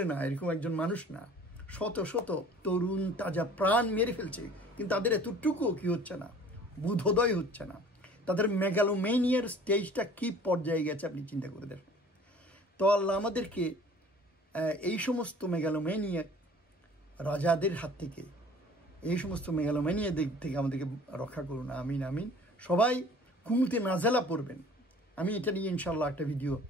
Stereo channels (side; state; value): both; normal; correlation 0.48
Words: না, এরকম একজন মানুষ না, শত শত তরুণ তাজা প্রাণ মেরে ফেলছে, কিন্তু তাদের এতটুকু কি হচ্ছে না, বোধোদয় হচ্ছে না। তাদের মেগালোমেনিয়ার স্টেজটা কি পর্যায়ে গেছে আপনি চিন্তা করে দেখেন। তো আল্লাহ আমাদেরকে এই সমস্ত মেগালোমেনিয়া রাজাদের হাত থেকে, এই সমস্ত মেগালোমেনিয়া দিক থেকে আমাদেরকে রক্ষা করুন, আমিন আমিন। সবাই কুনুতে নাজেলা পড়বেন। আমি এটা নিয়ে ইনশাআল্লাহ একটা ভিডিও